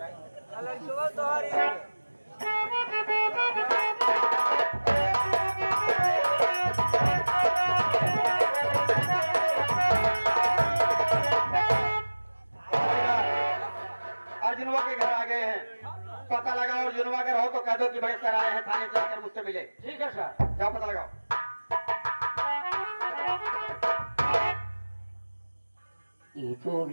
है। अर्जुनवा के घर आ गए हैं, पता लगाओ। अर्जुनवा अगर हो तो कह दो कि बड़े सर आए हैं, थाने से आकर मुझसे मिले। ठीक है सर, जाओ पता लगाओ। ये तो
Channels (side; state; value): both; inverted; correlation -1.00